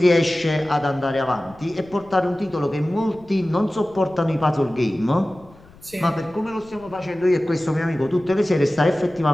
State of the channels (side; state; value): left; noise; rumble, 25 dB below the sound